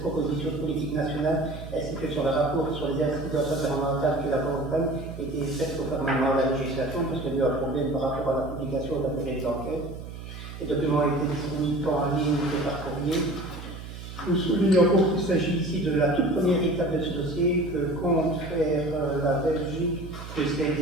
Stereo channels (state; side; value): noise; right; hum, 11 dB below the sound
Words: proposition de politique nationale ainsi que sur le rapport sur les incidences environnementales qui l'accompagnent était faite conformément à la législation parce qu'il y a eu un problème par rapport à la publication de la période d'enquête. Les documents ont été disponibles tant en ligne que par courrier. Nous soulignons qu'il s'agit ici de la toute première étape de ce dossier que compte faire la Belgique de ces